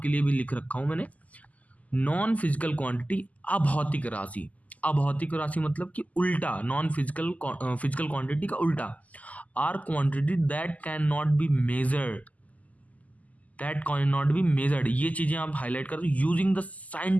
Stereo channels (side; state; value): right; late; 0.075 ms